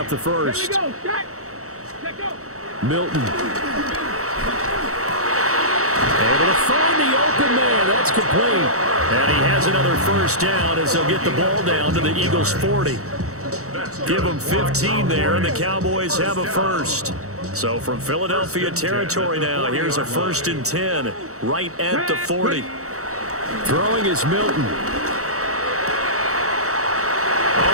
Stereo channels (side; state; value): left; late; 0.65 ms